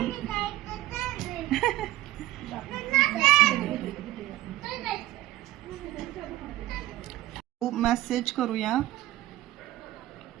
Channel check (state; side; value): quieter; left; 15.9 dB